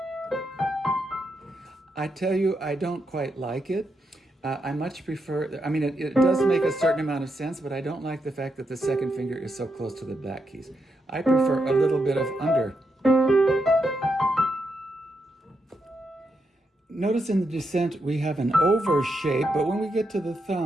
I tell you, I don't quite like it. I much prefer, I mean, it does make a certain amount of sense, but I don't like the fact that the second finger is so close to the back keys. I prefer a little bit of under. Notice in the descent we have an over shape, but when we get to the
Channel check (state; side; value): normal; both; correlation 0.83